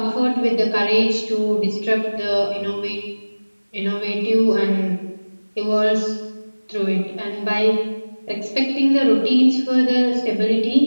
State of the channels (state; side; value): inverted; both; correlation -1.00